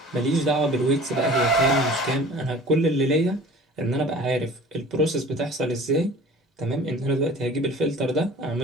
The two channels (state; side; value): normal; both; correlation 0.44